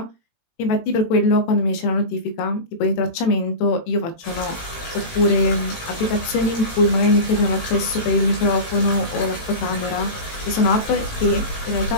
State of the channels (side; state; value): right; late; 18 ms